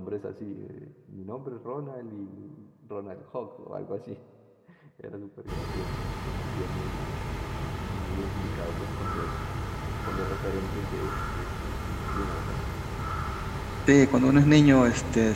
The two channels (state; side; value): identical; both; correlation 1.00